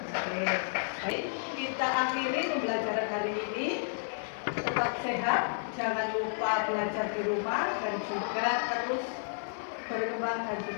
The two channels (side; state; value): right; silent; digital silence